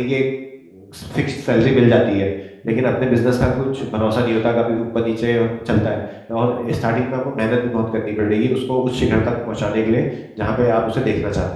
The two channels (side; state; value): both; identical; correlation 1.00